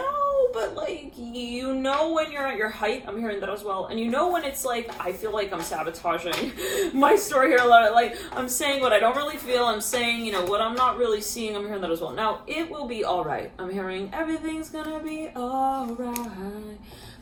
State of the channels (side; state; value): both; identical; correlation 1.00